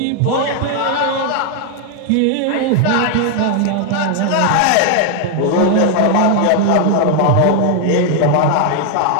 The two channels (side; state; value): both; different; correlation 0.00